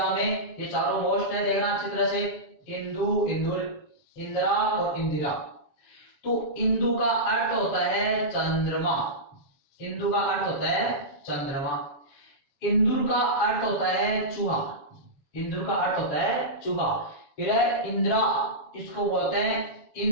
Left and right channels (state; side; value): late; right; 7.1 ms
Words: में, ये चारों मोस्ट है, देखना अच्छी तरह से। इंदु, इंदुर, इंदिरा और इंदिरा। तो इंदु का अर्थ होता है चंद्रमा, इंदु का अर्थ होता है चंद्रमा। इंदुर का अर्थ होता है चूहा, इंदुर का अर्थ होता है चूहा। फिर है इंद्रा, इसको बोलते हैं